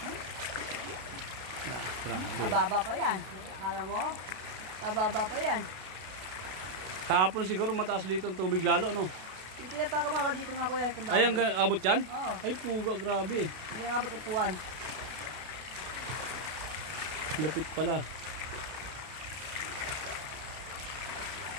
Mababa pa yan. Akala mo? Mababa pa yan. Kahapon siguro mataas dito ang tubig lalo, no? Yung tinataka mga dito nga kuya. Ay, ang abot yan? Oo. Ay, puga, grabe. Hindi nga abot upuan. Lapit pala.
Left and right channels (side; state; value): left; late; 32 ms